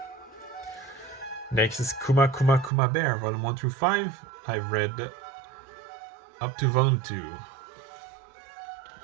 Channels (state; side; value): drops out; left; at 2.7 s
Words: Next is Kuma Kuma Kuma Bear, Volume 1 through 5. I've read up to Volume 2.